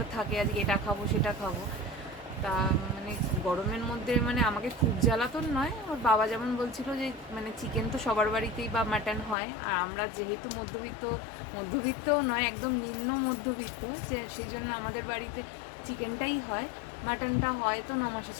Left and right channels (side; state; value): right; drops out; at 9.3 s